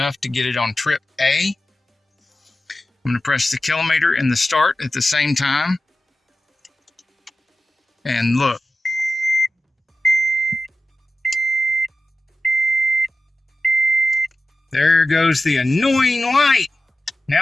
to get it on trip A. I'm going to press the kilometer and the start at the same time. And look. There goes the annoying light.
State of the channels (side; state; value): both; normal; correlation 0.94